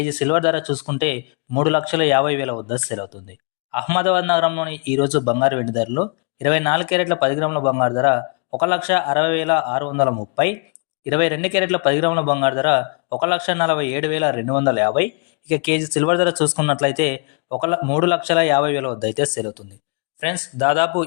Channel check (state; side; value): quieter; right; 36.0 dB